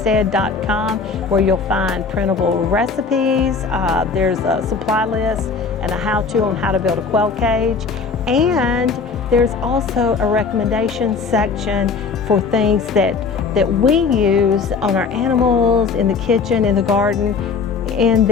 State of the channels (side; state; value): right; quieter; 5.0 dB